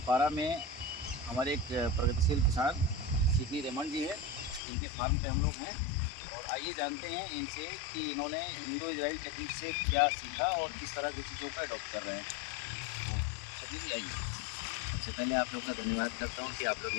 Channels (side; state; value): right; drops out; at 4.6 s